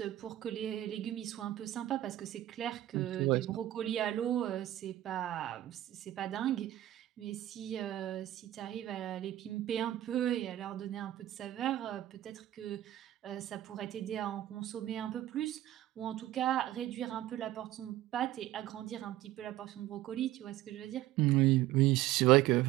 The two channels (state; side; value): quieter; left; 14.2 dB